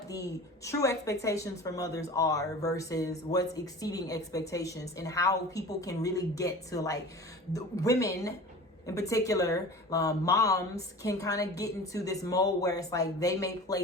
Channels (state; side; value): normal; both; correlation 0.38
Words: the true expectations for mothers are versus what's exceeding expectations, and how people can really get to, like, the women in particular, moms can kind of get into this mode where it's like they may